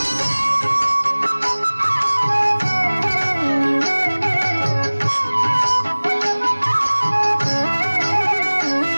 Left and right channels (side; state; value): both; inverted; correlation -1.00